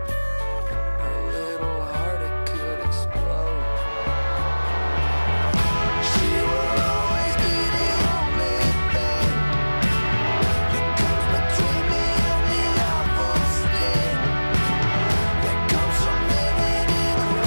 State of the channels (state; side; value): inverted; both; correlation -1.00